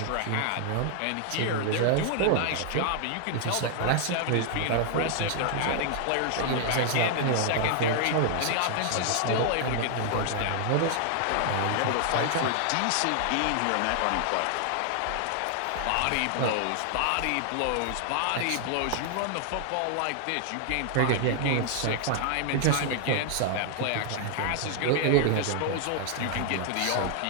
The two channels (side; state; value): both; different; correlation 0.00